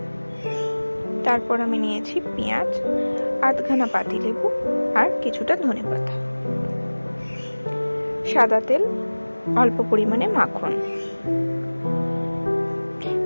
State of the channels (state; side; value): inverted; both; correlation -1.00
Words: তারপর আমি নিয়েছি পেঁয়াজ, আধখানা পাতিলেবু আর কিছুটা ধনেপাতা, সাদা তেল, অল্প পরিমাণে মাখন।